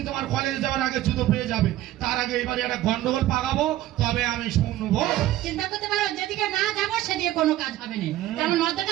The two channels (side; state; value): left; quieter; 14.5 dB